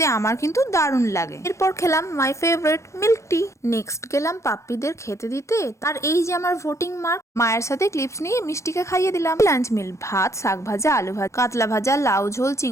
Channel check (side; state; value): right; late; 0.14 ms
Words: আমার কিন্তু দারুণ লাগে। এরপর খেলাম my favourite milk tea. Next গেলাম পাপ্পিদের খেতে দিতে। আর এই যে আমার ভোটিং মার্ক, মায়ের সাথে ক্লিপস নিয়ে মিষ্টিকে খাইয়ে দিলাম। লাঞ্চ মিল ভাত, শাক ভাজা, আলু ভাজা, কাতলা ভাজা, লাউ ঝোল,